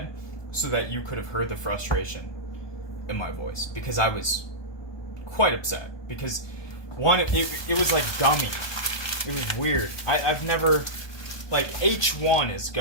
so that you could have heard the frustration in my voice. Because I was quite upset. Because, one, it was like gummy. It was weird. I've never... Like, H1 is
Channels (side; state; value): right; late; 1.2 ms